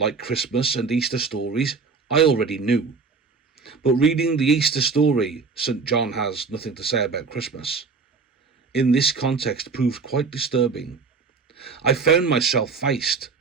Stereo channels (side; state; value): left; quieter; 4.8 dB